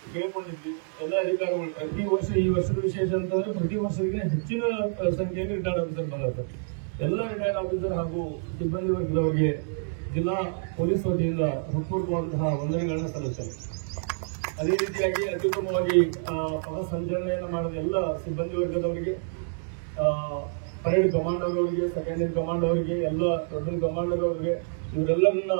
ಕೇಳಿಕೊಂಡಿದ್ವಿ. ಎಲ್ಲ ಅಧಿಕಾರಿಗಳು ಪ್ರತಿ ವರ್ಷ, ಈ ವರ್ಷದ ವಿಶೇಷ ಅಂತಂದ್ರೆ ಪ್ರತಿ ವರ್ಷಕ್ಕೆ ಹೆಚ್ಚಿನ ಸಂಖ್ಯೆಯಲ್ಲಿ ರಿಟೈರ್ಡ್ ಆಫೀಸರ್ ಬಂದಿರ್ತಾರೆ. ಎಲ್ಲ ರಿಟೈರ್ಡ್ ಆಫೀಸರ್ ಹಾಗೂ ಸಿಬ್ಬಂದಿ ವರ್ಗದವರಿಗೆ ಜಿಲ್ಲಾ ಪೊಲೀಸ್ ವತಿಯಿಂದ ಹೃತ್ಪೂರ್ವಕವಾದಂತಹ ವಂದನೆಗಳನ್ನು ಸಲ್ಲಿಸುತ್ತಾರೆ. ಅದೇ ರೀತಿಯಾಗಿ ಅತ್ಯುತ್ತಮವಾಗಿ ಪಥ ಸಂಚಲನೆಯನ್ನು ಮಾಡಿದ ಎಲ್ಲ ಸಿಬ್ಬಂದಿ ವರ್ಗದವರಿಗೆ, ಪರೇಡ್ ಕಮಾಂಡರ್ ಅವರಿಗೆ, ಸೆಕೆಂಡರಿ ಕಮಾಂಡ್ ಅವರಿಗೆ, ಎಲ್ಲ ದೊಡ್ಡ ಕಮಾಂಡರ್ ಅವರಿಗೆ, ಇವರೆಲ್ಲರನ್ನ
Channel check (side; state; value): left; silent; digital silence